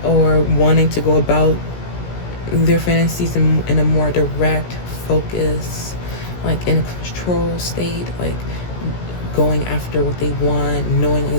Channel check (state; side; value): late; right; 17 ms